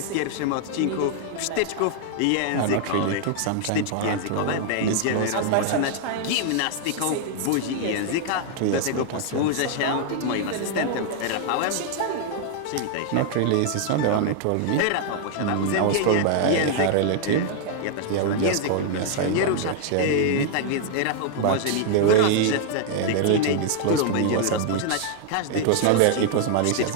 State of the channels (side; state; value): both; different; correlation 0.00